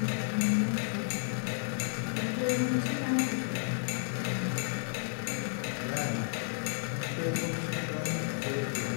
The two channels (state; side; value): silent; right; 56 dB below the other